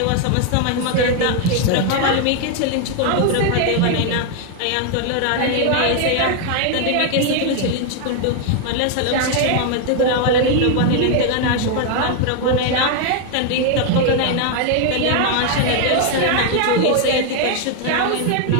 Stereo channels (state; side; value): different; both; correlation 0.00